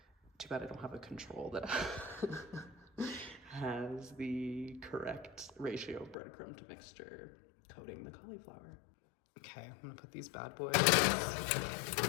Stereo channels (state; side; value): drops out; right; at 6.2 s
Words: Too bad I don't have a control that has the correct ratio of breadcrumb to mixture coating the cauliflower. Okay, I'm gonna put these bad boys